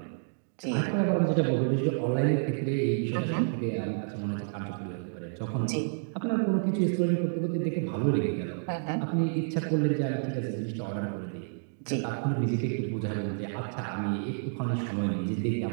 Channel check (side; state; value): left; silent; digital silence